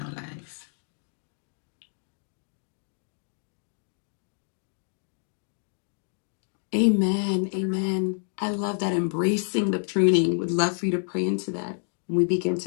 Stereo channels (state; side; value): silent; right; digital silence